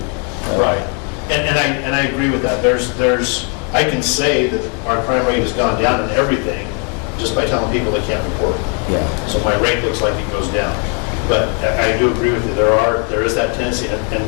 Right. And I agree with that. I can say that our crime rate has gone down in everything just by telling people they can't report. Yeah. So my rate looks like it goes down. But I do agree with you. There is that tendency, and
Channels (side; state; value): right; quieter; 38.3 dB